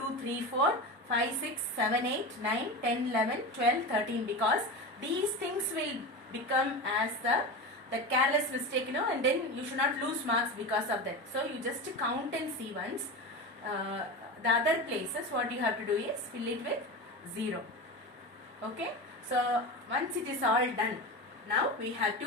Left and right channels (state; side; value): normal; both; correlation 0.24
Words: 3 4 5 6 7 8 9 10 11 12 13, because these things will become as the careless mistake, and then you should not lose marks because of that. So you just count and see once. The other places what you have to do is fill it with 0. Okay, so once it is all done, now we have